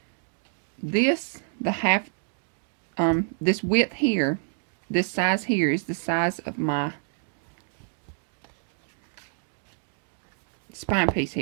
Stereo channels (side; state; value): left; silent; digital silence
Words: This, this width here, this size here is the size of my spine piece